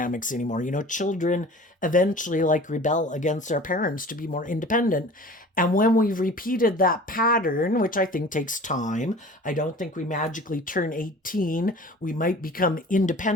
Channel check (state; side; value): normal; both; correlation 0.43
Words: anymore. Children eventually rebel against their parents to be more independent. And when we've repeated that pattern, which I think takes time, I don't think we magically turn 18. We might become